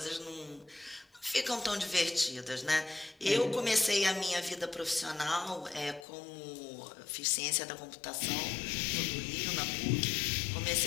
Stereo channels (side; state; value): right; drops out; at 6.1 s